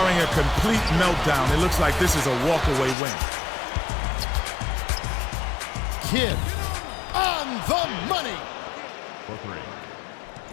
a complete meltdown, it looks like this is a walkaway win. Kidd on the money. for 3.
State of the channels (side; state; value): right; drops out; at 3.0 s